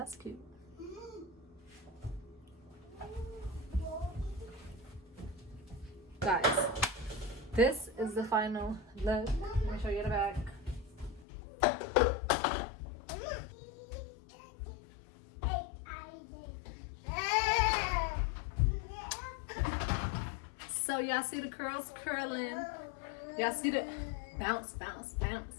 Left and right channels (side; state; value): right; drops out; at 11.2 s